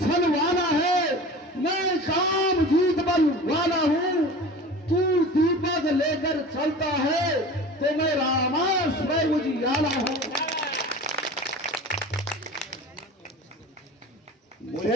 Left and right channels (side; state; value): both; normal; correlation 0.38